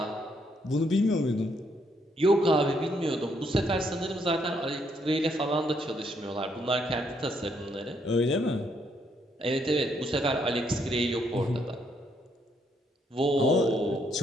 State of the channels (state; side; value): normal; both; correlation 0.73